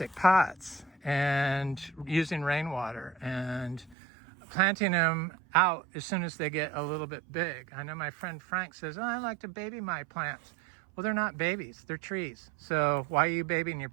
pots, and using rainwater, and planting them out as soon as they get a little bit big. I know my friend Frank says, oh, I like to baby my plants. Well, they're not babies, they're trees. So why are you babying your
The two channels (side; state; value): left; drops out; at 4.0 s